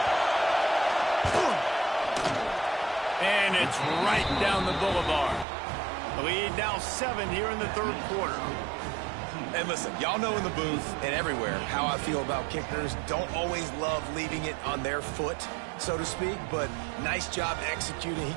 And it's right down the boulevard. The lead now 7 here in the 3rd quarter. And listen, y'all know in the booth and everywhere how I feel about kickers. Don't always love leaving it on their foot, so to speak, but nice job executing. He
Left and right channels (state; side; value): drops out; left; at 5.5 s